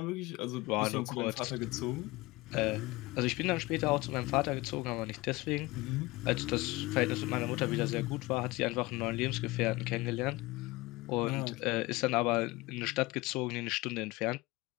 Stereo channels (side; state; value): right; quieter; 21.6 dB